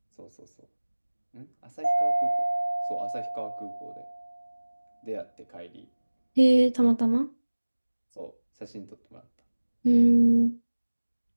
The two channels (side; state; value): both; inverted; correlation -1.00